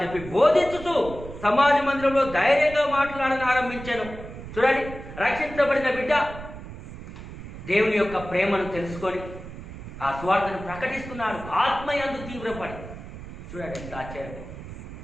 చెప్పి బోధించుతూ సమాజ మందిరంలో ధైర్యంగా మాట్లాడని ఆరంభించాను. చూడండి, రక్షించబడిన బిడ్డ దేవుని యొక్క ప్రేమను తెలుసుకొని ఆ సువార్తను ప్రకటిస్తున్నాడు. ఆత్మయందు తీవ్రపడి. చూడండి ఎంత ఆశ్చర్యం.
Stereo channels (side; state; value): right; noise; rumble, 12 dB below the sound